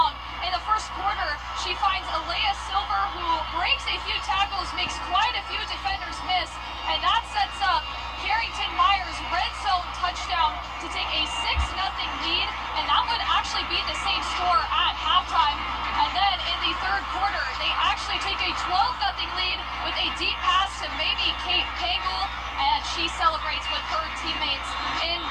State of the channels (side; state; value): both; identical; correlation 1.00